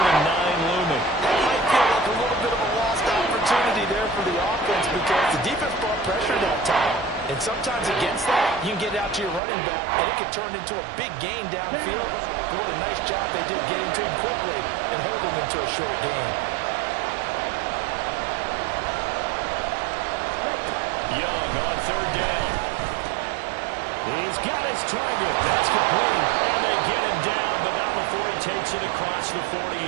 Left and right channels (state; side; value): drops out; left; at 9.4 s